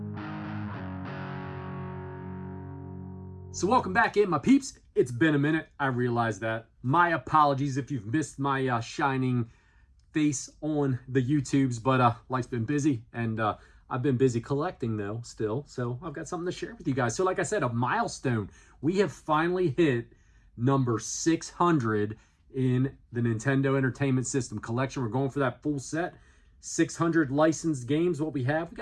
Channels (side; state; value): both; identical; correlation 1.00